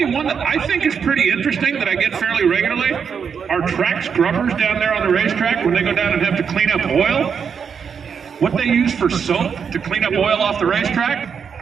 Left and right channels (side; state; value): left; quieter; 6.7 dB